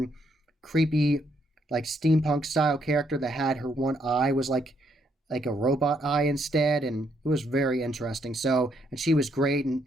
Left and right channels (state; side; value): normal; both; correlation 0.73